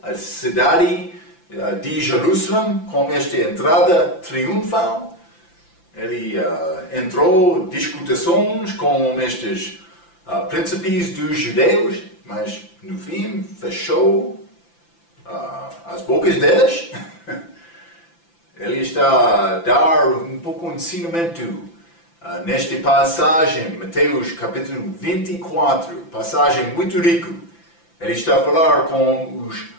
à cidade de Jerusalém com esta entrada triunfal. Ele entrou discussões com estes príncipes dos judeus, mas no fim fechou as bocas deles. Ele está a dar um pouco de ensinamento nesta passagem, Mateus capítulo 24, passagem muito rica. Ele está a falar com os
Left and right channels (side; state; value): right; late; 5.9 ms